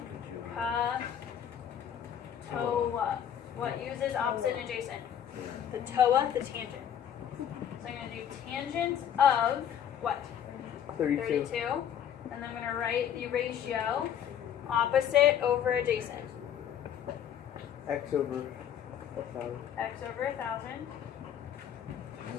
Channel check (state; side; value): quieter; right; 9.4 dB